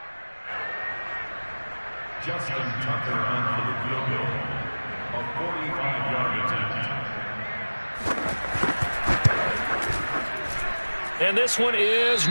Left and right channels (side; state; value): both; inverted; correlation -1.00